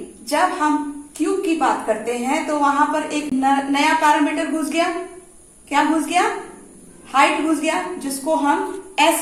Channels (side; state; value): both; identical; correlation 1.00